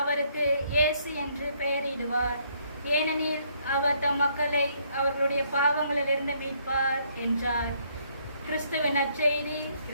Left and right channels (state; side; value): inverted; both; correlation -0.68